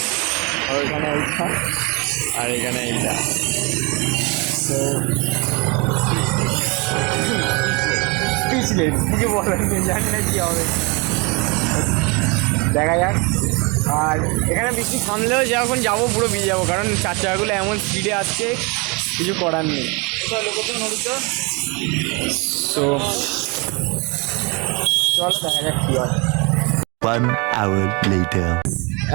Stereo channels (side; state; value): left; quieter; 29.5 dB